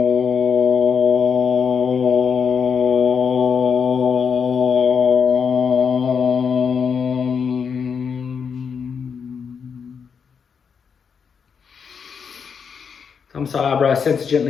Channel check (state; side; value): quieter; right; 6.4 dB